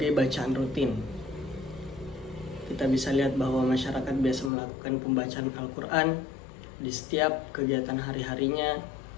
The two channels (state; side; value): drops out; right; at 4.5 s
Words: bacaan rutin. Kita bisa lihat bahwa masyarakat biasa melakukan pembacaan Al-Quran di setiap kegiatan hari-harinya.